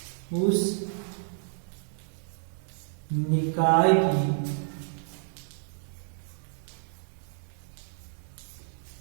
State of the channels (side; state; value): left; silent; digital silence